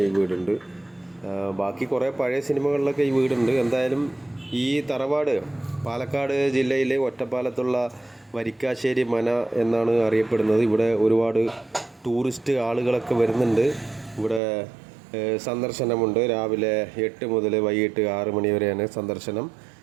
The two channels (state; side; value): drops out; left; at 14.4 s